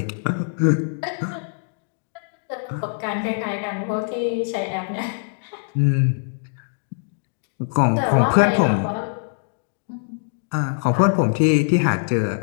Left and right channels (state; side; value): silent; right; digital silence